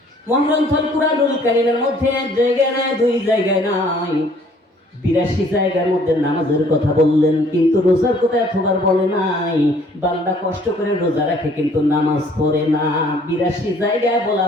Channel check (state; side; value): normal; both; correlation 0.58